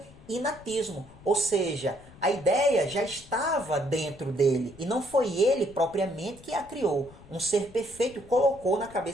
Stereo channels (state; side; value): noise; left; rumble, 21 dB below the sound